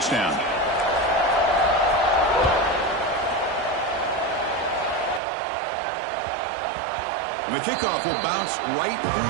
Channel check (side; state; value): left; drops out; at 5.2 s